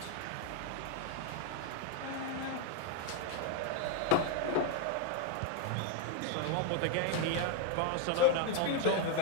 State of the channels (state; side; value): different; both; correlation 0.01